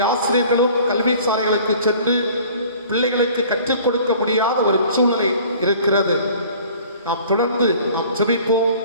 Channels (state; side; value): inverted; both; correlation -0.49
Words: ஆசிரியர்களும் கல்வி சாலைகளுக்கு சென்று பிள்ளைகளுக்கு கற்றுக் கொடுக்க முடியாத ஒரு சூழலை இருக்கிறது. நாம் தொடர்ந்து நாம் ஜெபிப்போம்.